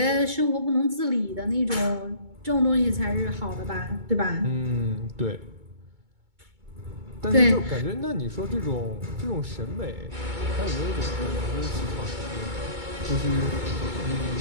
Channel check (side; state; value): left; late; 2.2 ms